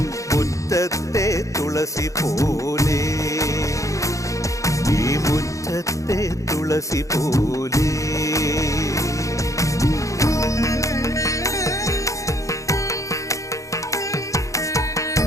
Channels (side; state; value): right; late; 0.15 ms